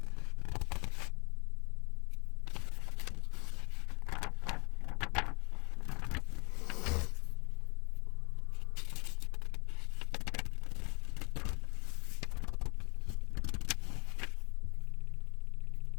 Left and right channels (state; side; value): quieter; right; 31.3 dB